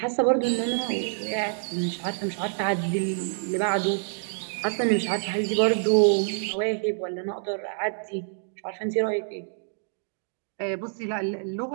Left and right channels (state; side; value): silent; left; digital silence